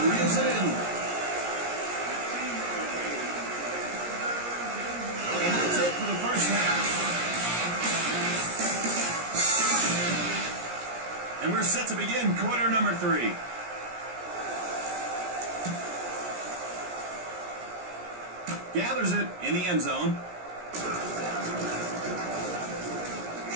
reels it in. And that's it for the first half. And we're set to begin quarter number 3. Gathers it in the end zone.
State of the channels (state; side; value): late; left; 17 ms